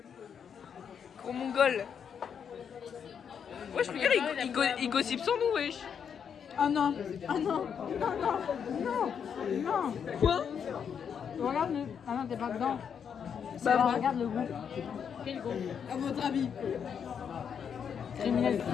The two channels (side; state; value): right; quieter; 7.4 dB